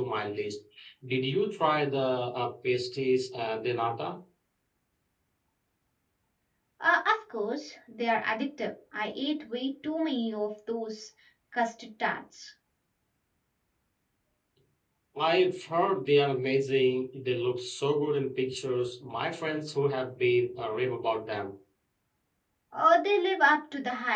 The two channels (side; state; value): both; identical; correlation 1.00